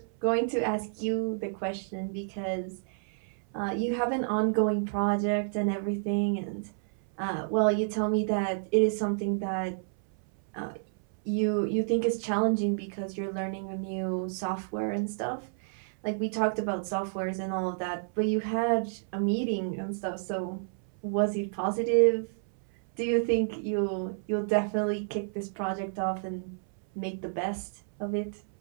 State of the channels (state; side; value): silent; left; 58 dB below the other